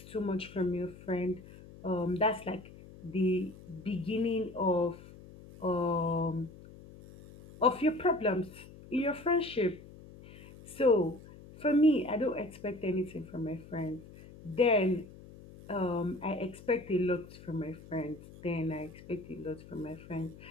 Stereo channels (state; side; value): noise; left; hum, 18 dB below the sound